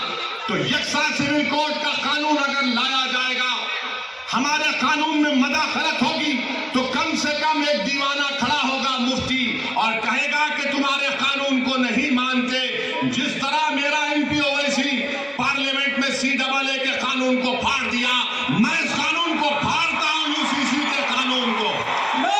तो यक्सा सिविल कोड का कानून अगर लाया जाएगा, हमारे कानून में मदाखलत होगी, तो कम से कम एक दीवाना खड़ा होगा मुफ्ती और कहेगा कि तुम्हारे कानून को नहीं मानते। जिस तरह मेरा एमपी ओवैसी पार्लियामेंट में CAA के कानून को फाड़ दिया, मैं इस कानून को फाड़ता हूं, UCC के कानून को।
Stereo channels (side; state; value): both; identical; correlation 1.00